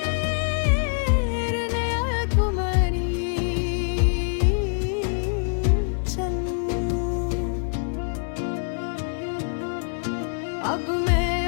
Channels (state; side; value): silent; right; 62 dB below the other